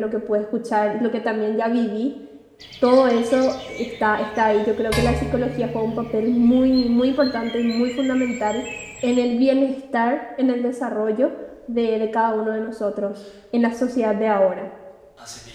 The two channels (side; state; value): both; identical; correlation 1.00